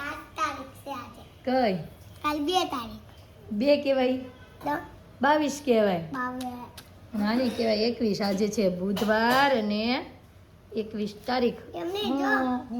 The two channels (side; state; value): both; identical; correlation 1.00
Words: કઈ કાલ 2 તારીખ 2 કહેવાય, 22 કહેવાય, નાની કહેવાય 21. આજે છે બુધવાર અને 21 તારીખ. એમને